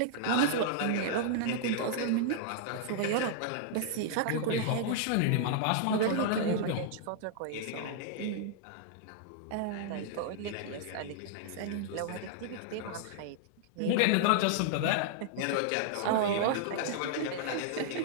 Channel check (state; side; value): different; both; correlation -0.01